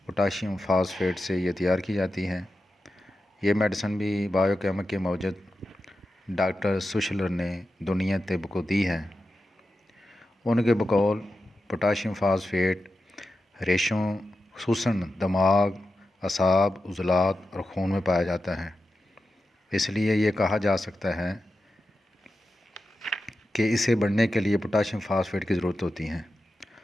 پوٹاشیم فاسفیٹ سے یہ تیار کی جاتی ہے۔ یہ میڈیسن بھی بایو کیمک کے موجد ڈاکٹر سوشلر نے دنیا طب کو دی ہے۔ ان کے بقول پوٹاشیم فاسفیٹ ریشوں خصوصاً دماغ، اعصاب، عضلات اور خون میں پایا جاتا ہے۔ اس لیے یہ کہا جا سکتا ہے کہ اسے بڑھنے کے لیے پوٹاشیم فاسفیٹ کی ضرورت ہوتی ہے۔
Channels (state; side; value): normal; both; correlation 0.91